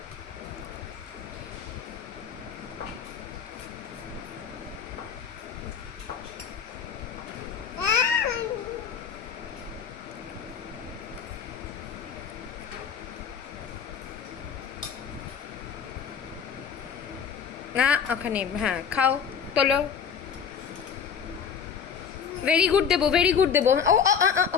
না ওখানে, হ্যাঁ খাও, তোলো। ভেরি গুড দেবো, ভেরি গুড দেবো। ও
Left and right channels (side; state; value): right; quieter; 7.2 dB